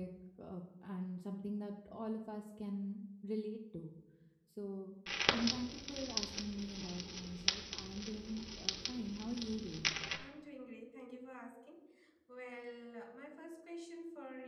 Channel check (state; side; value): identical; both; correlation 1.00